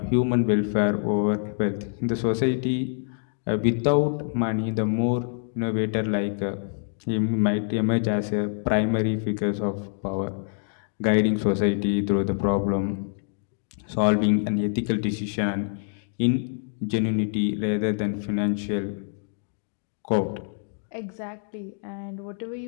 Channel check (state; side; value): silent; right; digital silence